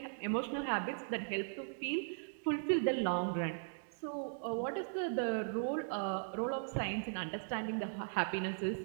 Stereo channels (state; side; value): silent; left; digital silence